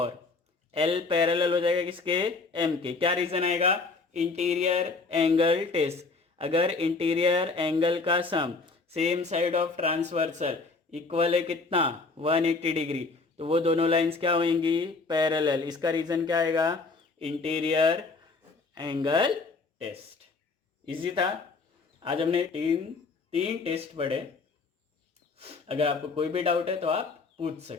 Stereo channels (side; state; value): right; quieter; 4.0 dB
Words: L पैरेलल हो जाएगा किसके, M के। क्या रीजन आएगा, इंटीरियर एंगल टेस्ट। अगर इंटीरियर एंगल का sum same side of transversal equal है कितना, 180 डिग्री, तो वो दोनों लाइंस क्या होंगी, पैरेलल। इसका रीजन क्या आएगा, इंटीरियर एंगल टेस्ट। इजी था। आज हमने तीन टेस्ट पढ़े। अगर आपको कोई भी डाउट है तो आप पूछ